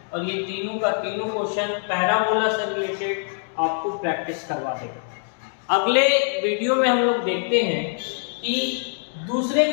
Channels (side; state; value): right; silent; digital silence